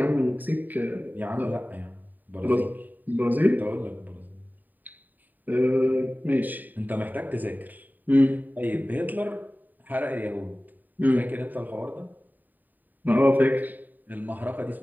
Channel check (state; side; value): late; left; 0.087 ms